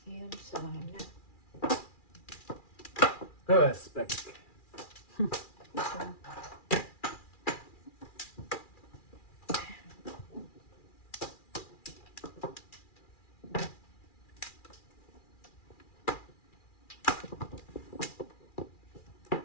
Yun sana. Respect.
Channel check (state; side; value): late; right; 2.4 ms